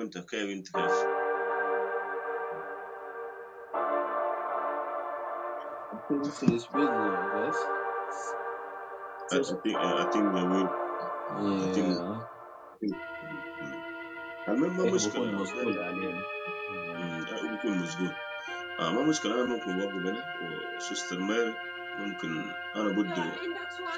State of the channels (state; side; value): identical; both; correlation 1.00